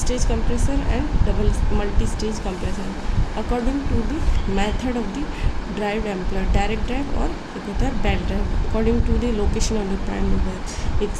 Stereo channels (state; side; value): identical; both; correlation 1.00